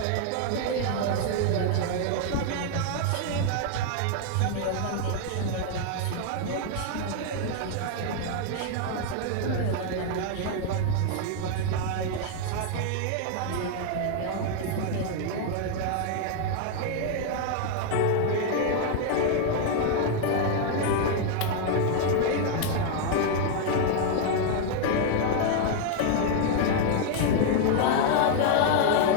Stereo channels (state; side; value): different; both; correlation 0.00